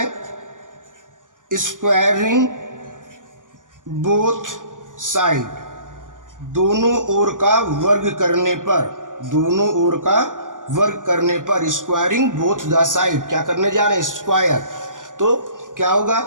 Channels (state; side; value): late; left; 0.88 ms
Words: स्क्वायरिंग बोथ साइड, दोनों ओर का वर्ग करने पर, दोनों ओर का वर्ग करने पर, स्क्वायरिंग बोथ द साइड, क्या करने जा रहे हैं, स्क्वायर। तो क्या